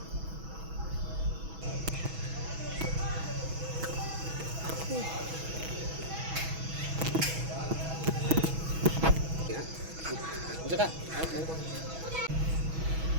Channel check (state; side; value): late; left; 6.1 ms